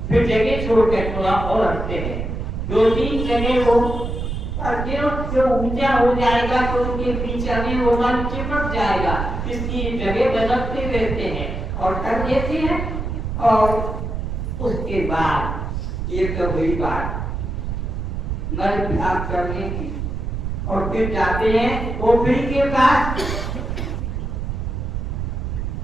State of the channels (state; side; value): noise; right; rumble, 4 dB below the sound